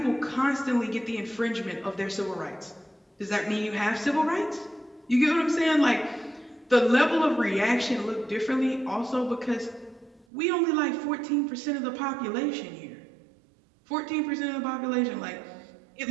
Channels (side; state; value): left; drops out; at 10.2 s